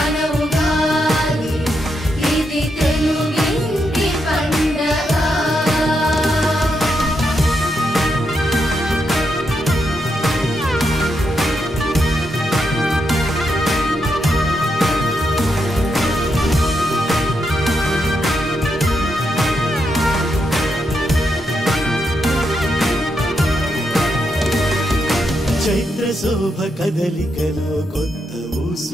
శోభ కదలికలో కొత్త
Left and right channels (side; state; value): both; normal; correlation 0.82